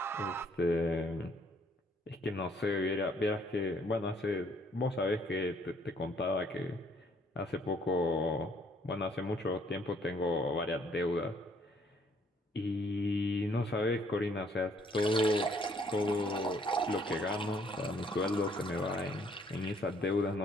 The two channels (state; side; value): normal; both; correlation 0.64